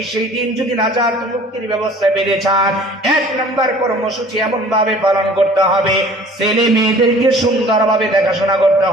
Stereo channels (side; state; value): both; normal; correlation 0.49